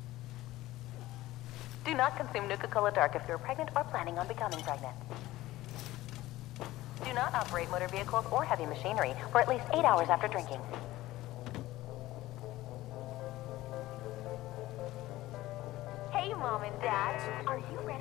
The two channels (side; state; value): right; quieter; 16.8 dB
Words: Do not consume Nuka Cola Dark if you're pregnant or planning on becoming pregnant. Do not operate motor vehicles or heavy machinery for at least 8 hours after drinking. Hey, Mom and Dad, are you